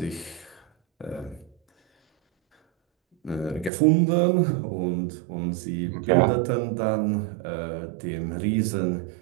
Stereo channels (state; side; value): drops out; left; at 3.7 s